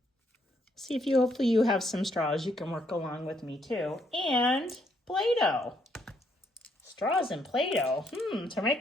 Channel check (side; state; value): both; normal; correlation 0.72